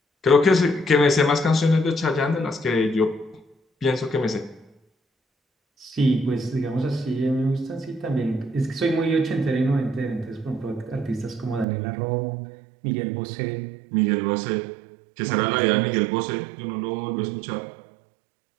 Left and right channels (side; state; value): left; drops out; at 11.7 s